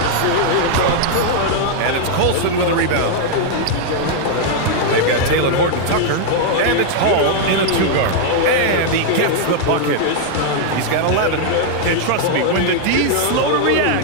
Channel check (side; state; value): both; different; correlation -0.01